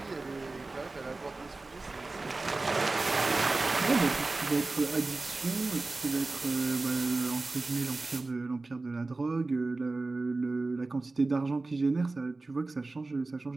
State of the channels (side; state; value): left; quieter; 3.4 dB